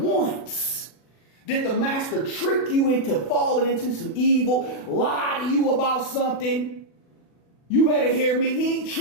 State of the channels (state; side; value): late; right; 40 ms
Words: did the master trick you into falling into some evil, lie to you about something. You better hear me. He ain't